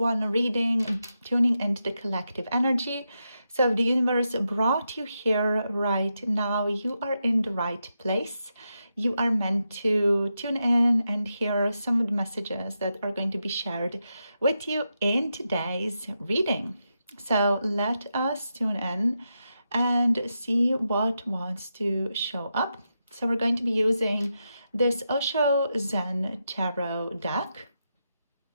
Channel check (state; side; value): inverted; both; correlation -0.86